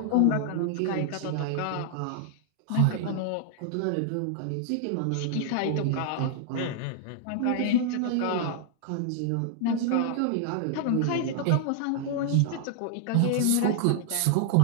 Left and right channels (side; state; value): both; different; correlation -0.01